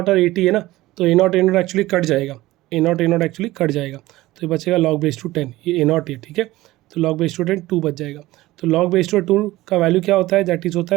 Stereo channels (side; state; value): left; quieter; 17.7 dB